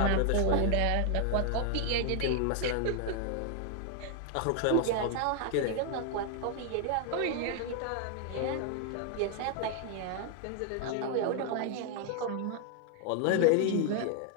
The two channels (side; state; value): both; different; correlation 0.00